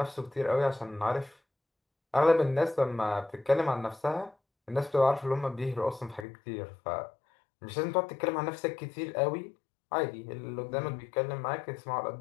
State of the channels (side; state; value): right; drops out; at 6.2 s